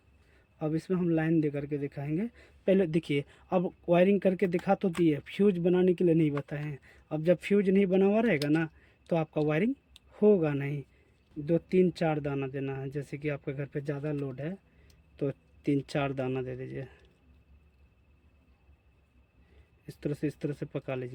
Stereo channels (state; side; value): identical; both; correlation 1.00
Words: अब इसमें हम लाइन दे करके दिखाएंगे। पहले देखिए, अब वायरिंग करके दिखा तो दिए, फ्यूज बनाने के लिए नहीं बताए हैं। अब जब फ्यूज नहीं बना हुआ रहेगा ना, तो आपका वायरिंग होगा नहीं। 2 3 4 दाना देना है। जैसे कि आपके घर पे ज़्यादा लोड है तो 3 4 दाना दे दीजिए। इस तरह से पका